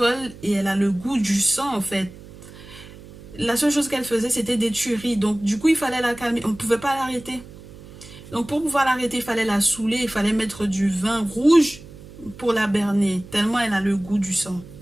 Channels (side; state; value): right; noise; hum, 18 dB below the sound